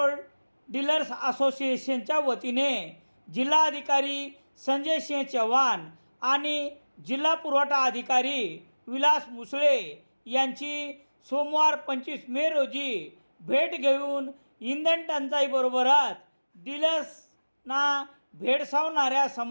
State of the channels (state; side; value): inverted; both; correlation -1.00